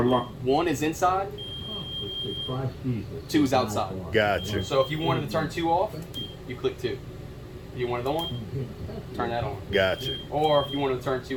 lo- one is inside, two is outside. Gotcha. So if you wanted to turn two off, you click two. If you wanted on, turn that on. Gotcha. Or if you wanted to turn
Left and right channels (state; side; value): identical; both; correlation 1.00